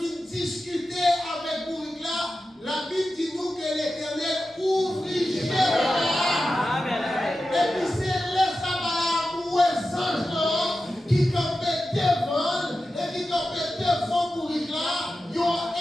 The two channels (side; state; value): both; normal; correlation 0.92